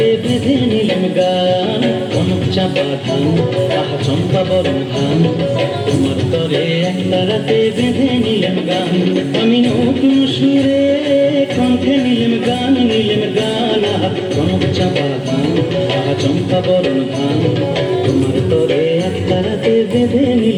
বেঁধে নিলাম গান, কনক চাপা ধান, আহা চম্পা বরণ ধান। তোমার তরে একটা রাতে বেঁধে নিলাম গান, আমি নতুন সুরে কণ্ঠে নিলাম গান, আহা কনক চাপা ধান, আহা চম্পা বরণ ধান। তোমার তরে একটা রাতে বেঁধে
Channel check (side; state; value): both; identical; correlation 1.00